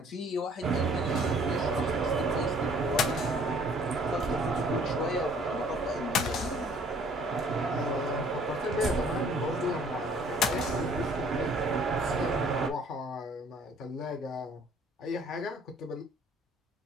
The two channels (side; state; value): both; normal; correlation 0.57